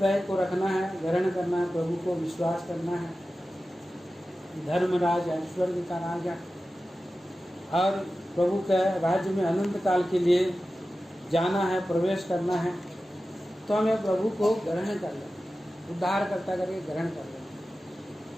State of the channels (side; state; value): both; normal; correlation 0.94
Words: को रखना है, ग्रहण करना है, प्रभु को विश्वास करना है। धर्मराज है, स्वर्ग का राजा, और प्रभु के राज्य में अनंत काल के लिए जाना है, प्रवेश करना है। तो हमें प्रभु को ग्रहण कर लेना, उद्धार करता करके ग्रहण कर लेना।